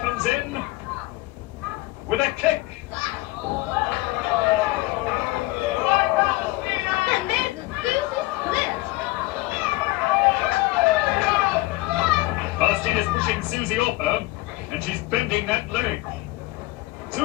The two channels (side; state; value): right; quieter; 20.4 dB